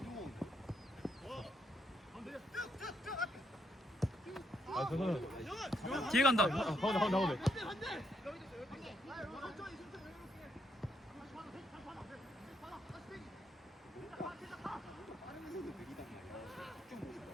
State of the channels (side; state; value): both; normal; correlation 0.76